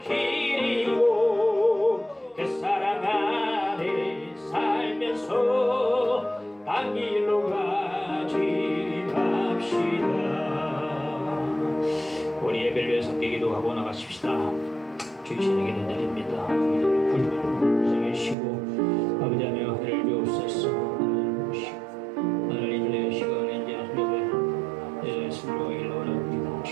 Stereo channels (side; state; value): left; drops out; at 18.4 s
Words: 그 사랑 안에 살면서 딴 길로 가지 맙시다. 우리 예배를 위해서 기도하고 나가십시다. 주의 신에게 드립니다. 불을 쉬고 아버지 하나님 하늘을 주옵소서. 하나님 내 시간에 이제 예배 순종하기를 원합니다.